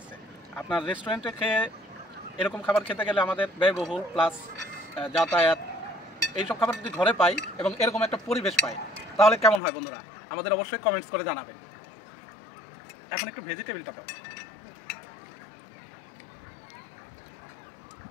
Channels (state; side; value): drops out; right; at 9.6 s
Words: আপনার রেস্টুরেন্টে খেয়ে এরকম খাবার খেতে গেলে আমাদের ব্যয়বহুল প্লাস যাতায়াত, এইসব খাবার যদি ঘরে পাই এবং এরকম একটা পরিবেশ পাই তাহলে কেমন হয় বন্ধুরা? আমাদের অবশ্যই কমেন্টস করে জানাবেন। এখন একটু ভেজিটেবিলটা দাও।